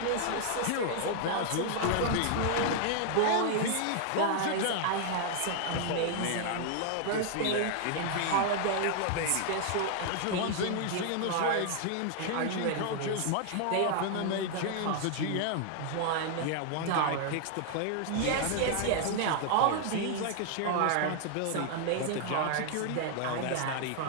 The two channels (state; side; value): different; both; correlation 0.00